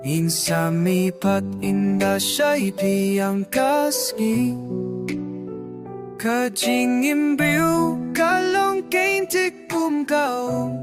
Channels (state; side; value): identical; both; correlation 1.00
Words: Insami pat inda siya'y piyang kasgi Ka jingim briu kalong kaintik kumkao